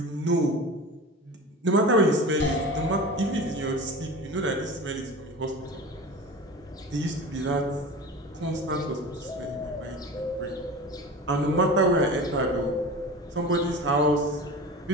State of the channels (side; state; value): both; normal; correlation 0.33